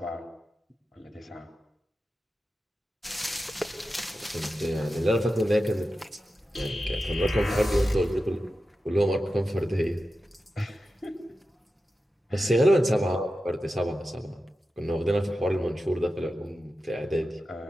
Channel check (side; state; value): both; normal; correlation 0.92